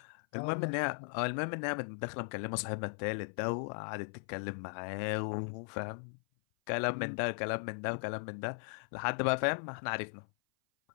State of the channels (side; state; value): right; silent; 53 dB below the other